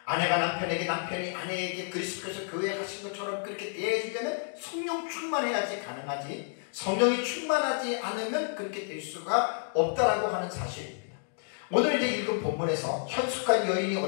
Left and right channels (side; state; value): right; silent; 58 dB below the other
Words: 아내가 남편에게, 남편이 아내에게 그리스도께서 교회에 가신 것처럼 그렇게 대해지려면 성령 충만해야지 가능하지, 성령이 충만하지 않으면 그렇게 될 수가 없다라고 하는 사실입니다. 오늘 이제 읽은 본문에서 현숙한 여인이